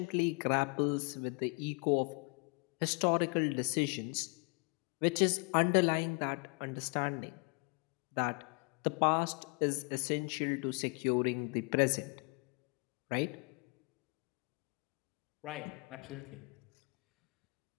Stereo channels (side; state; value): right; quieter; 34.0 dB